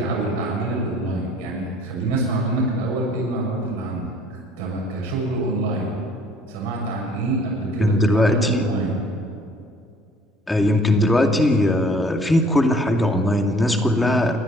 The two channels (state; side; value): normal; both; correlation 0.55